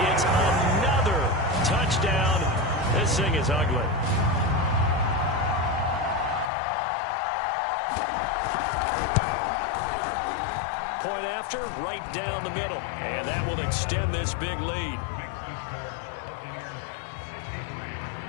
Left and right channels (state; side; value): drops out; right; at 6.5 s